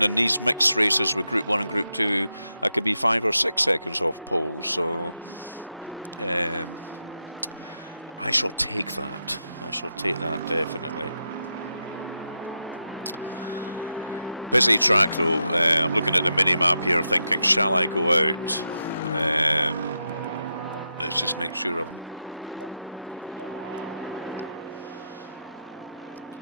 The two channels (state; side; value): inverted; both; correlation -0.85